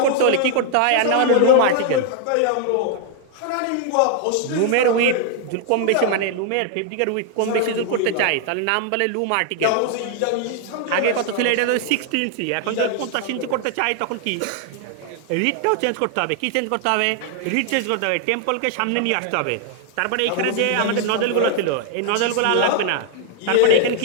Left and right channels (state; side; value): different; both; correlation 0.00